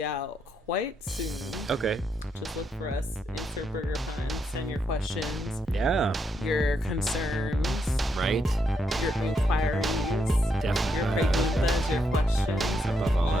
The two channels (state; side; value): normal; both; correlation 0.79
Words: out quite soon. Okay. Just look for us. Insert Burger Pun. Send your questions. Yeah. Your concerns. Right. Your inquiries. Definitely. Your preguntas. Your questions. Above all